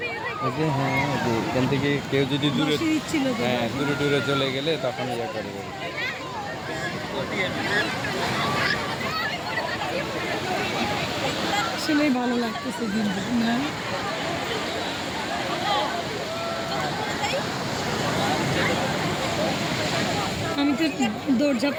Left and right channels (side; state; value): both; identical; correlation 1.00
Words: ওই যে হ্যাঁ ওই যে এখান থেকে কেউ যদি দূরে বসে দিচ্ছিল তো হ্যাঁ দূরে দূরে চলে গেলে তখন ইয়ে করবে। আসলেই ভালো লাগতেছে কিন্তু না আমি তো দৌড়ঝাঁপ